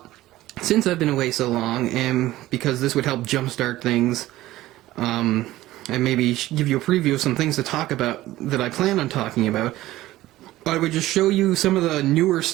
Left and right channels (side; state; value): left; quieter; 16.2 dB